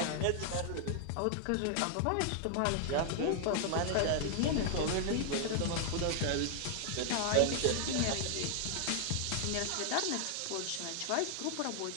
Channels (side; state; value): both; different; correlation 0.00